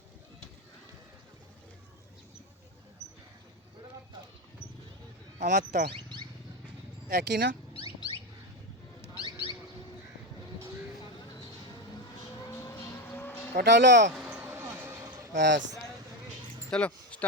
আমার তা একই না কটা হলো ব্যাস চলো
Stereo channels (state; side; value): normal; both; correlation 0.12